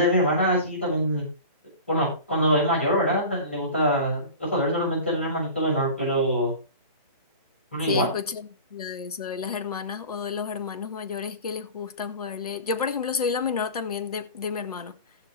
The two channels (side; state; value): both; inverted; correlation -0.36